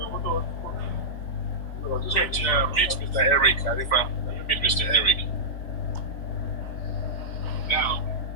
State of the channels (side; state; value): right; late; 3.9 ms